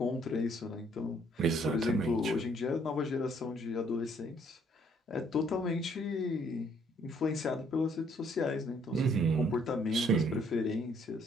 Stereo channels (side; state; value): both; normal; correlation 0.65